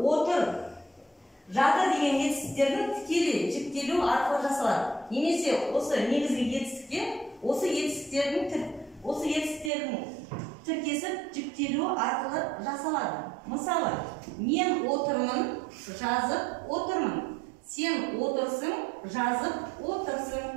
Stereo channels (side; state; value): left; drops out; at 9.7 s